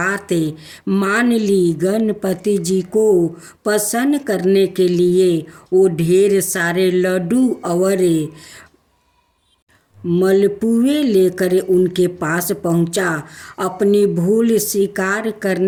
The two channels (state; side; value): identical; both; correlation 1.00